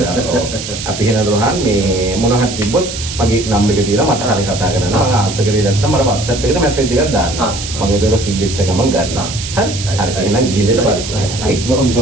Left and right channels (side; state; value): right; noise; hiss, 8 dB below the sound